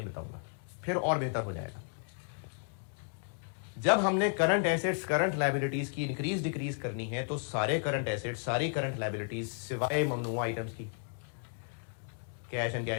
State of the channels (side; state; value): right; silent; 55 dB below the other